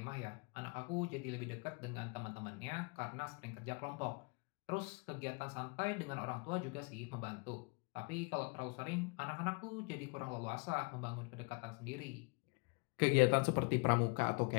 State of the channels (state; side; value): quieter; right; 31.6 dB